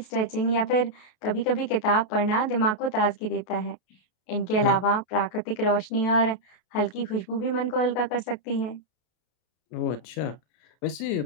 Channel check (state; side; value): late; right; 33 ms